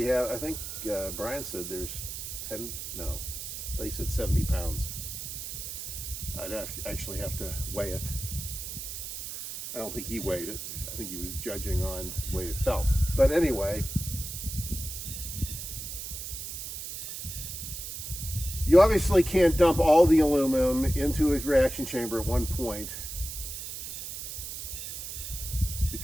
have, I think Brian said there's 10, no, they said 70 pounds. I'd actually have to weigh it. I don't think he weighed it. I think he was judging on the way it felt. But anyway, you obviously can't dump all the aluminum into a reaction chamber at one point,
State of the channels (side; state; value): right; noise; hiss, 7 dB below the sound